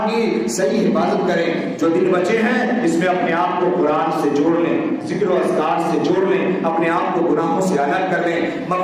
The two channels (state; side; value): identical; both; correlation 1.00